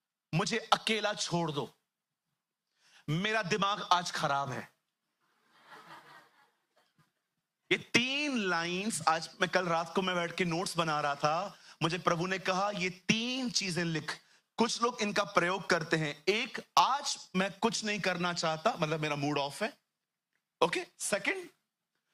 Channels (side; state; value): both; identical; correlation 1.00